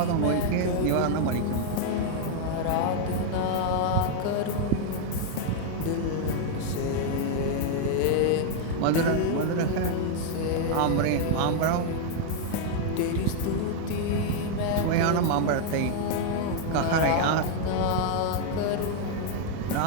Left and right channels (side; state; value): both; different; correlation 0.00